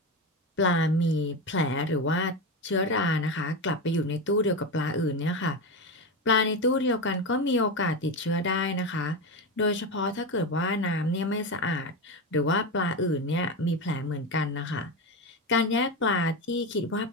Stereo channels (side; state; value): both; normal; correlation 0.17